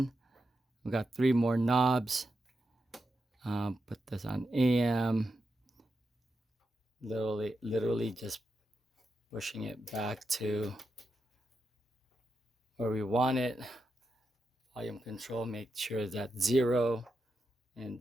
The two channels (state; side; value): normal; both; correlation 0.87